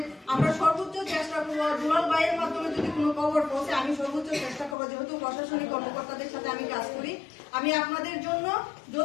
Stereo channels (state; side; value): drops out; right; at 4.8 s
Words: আমরা সর্বোচ্চ চেষ্টা করবো, দুলাল ভাইয়ের মাধ্যমে যদি কোনো খবর পৌঁছে আমি সর্বোচ্চ চেষ্টা করবো, যেহেতু প্রশাসনিক কর্মকর্তাদের সাথে আমি কাজ করি, আমি আপনাদের জন্য